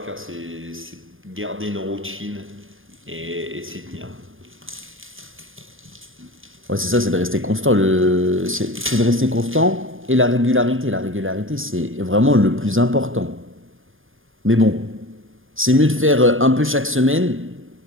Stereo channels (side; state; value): left; late; 0.59 ms